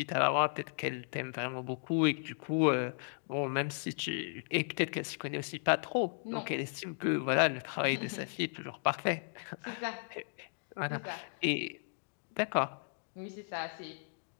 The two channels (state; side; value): silent; right; digital silence